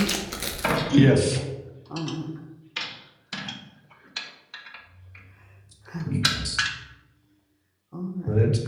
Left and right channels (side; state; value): both; identical; correlation 1.00